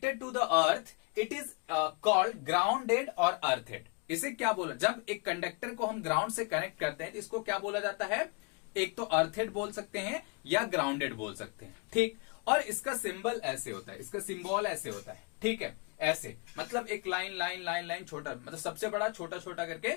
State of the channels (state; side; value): quieter; right; 32.3 dB